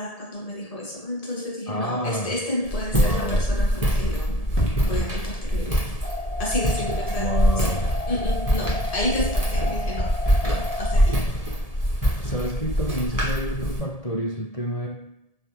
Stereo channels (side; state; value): right; late; 1.7 ms